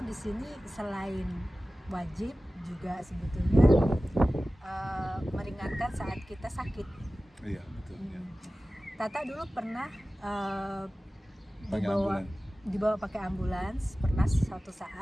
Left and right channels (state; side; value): normal; both; correlation 0.96